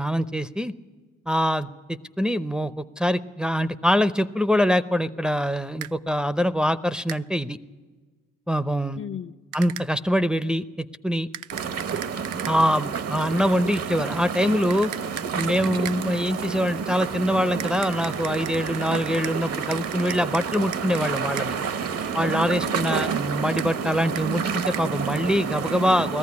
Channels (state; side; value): normal; both; correlation 0.79